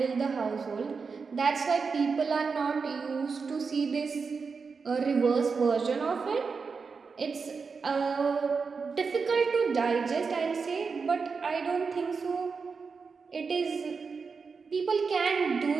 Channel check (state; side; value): quieter; left; 5.1 dB